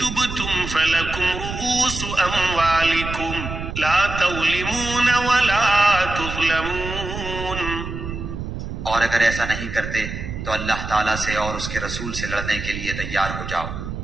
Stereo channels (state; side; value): noise; right; rumble, 7 dB below the sound